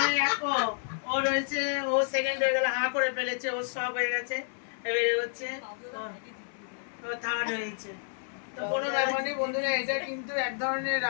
ও রয়েছে, ও সেকেন্ড হয়ে গেল, হাঁ করে ফেলেছে, ও সব হয়ে গেছে, এবারে হচ্ছে থার্ড হয়েছে। তো কোনো ব্যাপার নেই বন্ধুরা, এটা কিন্তু এক ধরনের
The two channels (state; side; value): silent; right; 58 dB below the other